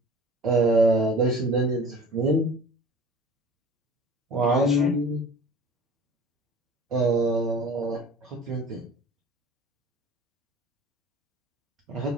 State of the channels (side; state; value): both; normal; correlation 0.44